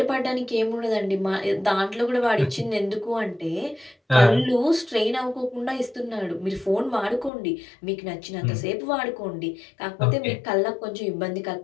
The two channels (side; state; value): right; drops out; at 7.3 s